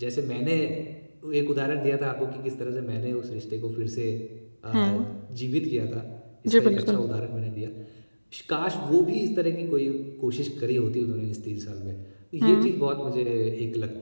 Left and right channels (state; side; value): inverted; both; correlation -1.00